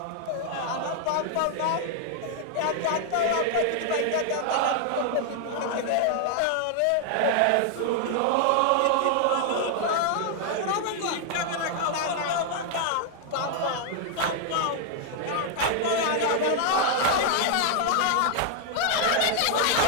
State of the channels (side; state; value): both; different; correlation 0.00